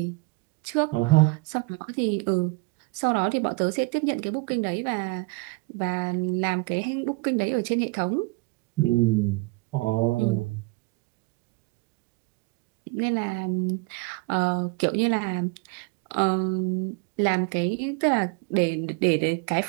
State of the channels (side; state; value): left; quieter; 25.2 dB